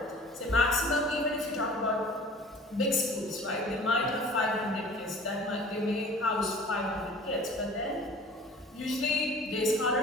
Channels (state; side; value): normal; both; correlation 0.45